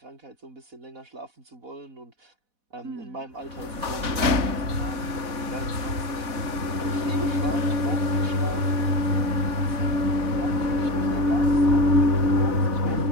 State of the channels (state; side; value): late; left; 4.1 ms